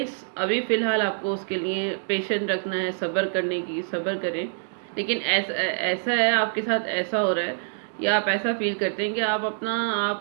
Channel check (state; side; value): silent; left; digital silence